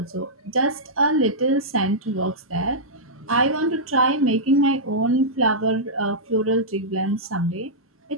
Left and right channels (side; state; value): both; normal; correlation -0.12